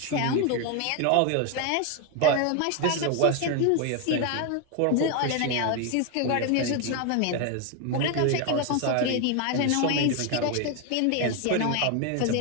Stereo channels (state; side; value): different; both; correlation 0.01